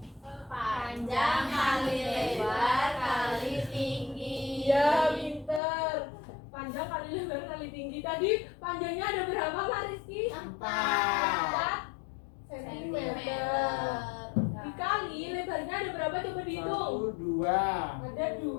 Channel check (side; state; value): right; drops out; at 5.6 s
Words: Panjang kali lebar kali tinggi. Iya, pinter. Panjang kali lebar kali tinggi. Tadi panjangnya ada berapa, Mas Rizky? 4 sentimeter. Dikali lebarnya ada berapa? Coba dihitung. 1, 2. Ada